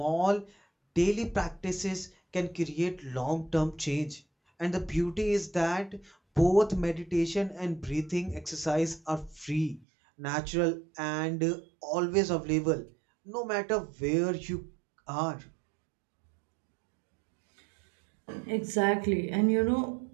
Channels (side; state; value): left; drops out; at 9.9 s